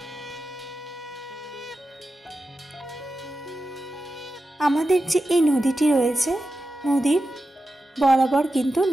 আমাদের যে এই নদীটি রয়েছে, নদীর বরাবর কিন্তু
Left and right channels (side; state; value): both; normal; correlation 0.91